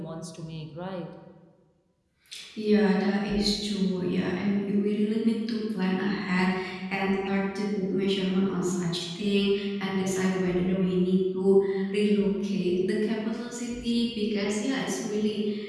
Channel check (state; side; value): identical; both; correlation 1.00